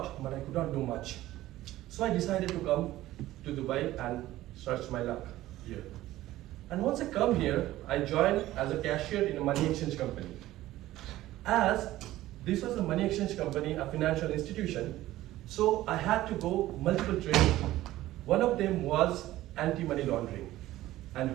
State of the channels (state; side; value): quieter; left; 15.6 dB